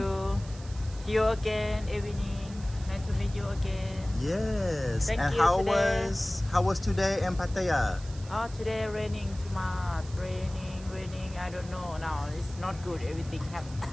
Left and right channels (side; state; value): right; noise; hiss, 20 dB below the sound